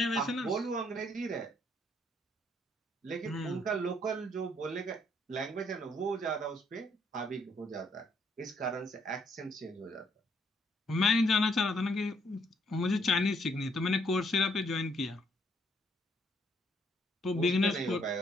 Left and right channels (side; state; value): both; normal; correlation 0.69